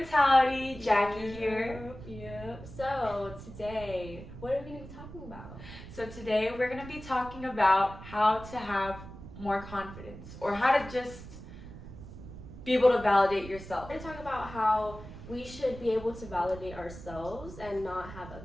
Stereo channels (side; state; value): right; noise; rumble, 14 dB below the sound